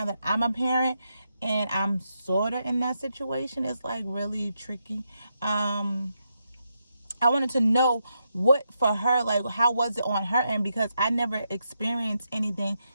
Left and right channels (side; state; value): both; inverted; correlation -0.83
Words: that I'm a parent and I'm sort of in that situation. It's like really tricky. I wanted to know what for her, like how was it on her end, because I never experienced anything.